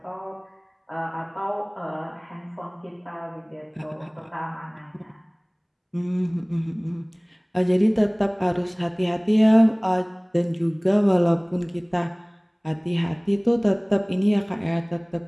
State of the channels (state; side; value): identical; both; correlation 1.00